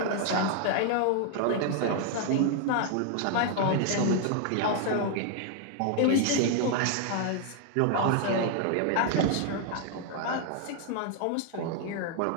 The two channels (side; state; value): both; different; correlation 0.00